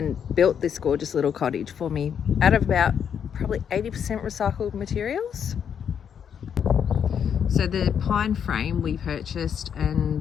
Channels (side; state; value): right; quieter; 8.0 dB